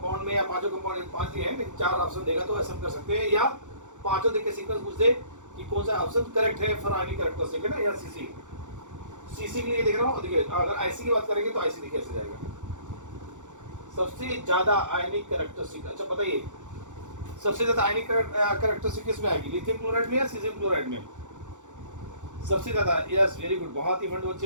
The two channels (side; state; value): left; late; 0.85 ms